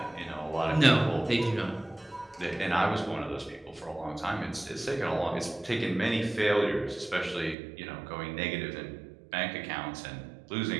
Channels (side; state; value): left; drops out; at 7.6 s